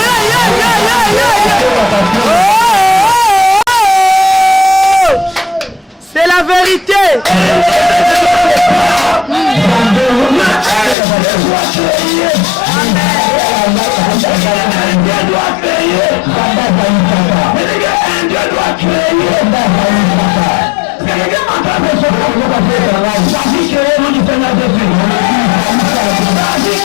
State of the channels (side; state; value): right; drops out; at 11.0 s